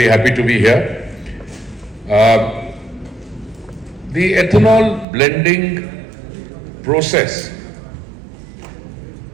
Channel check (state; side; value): drops out; left; at 5.1 s